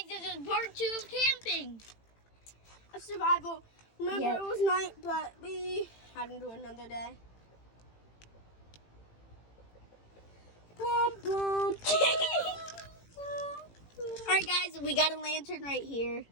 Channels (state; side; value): late; right; 18 ms